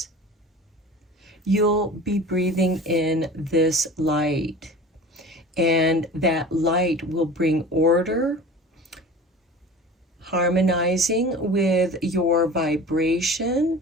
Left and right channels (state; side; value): normal; both; correlation 0.38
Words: you'll be breathing in this light. And that light will bring order, harmonizing with your vibration,